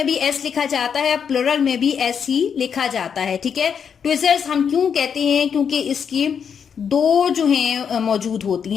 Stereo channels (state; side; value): quieter; right; 7.2 dB